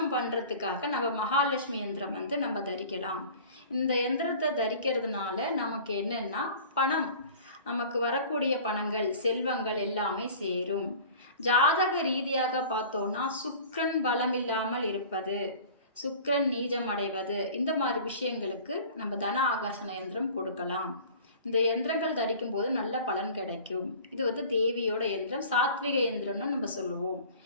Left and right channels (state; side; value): inverted; both; correlation -0.43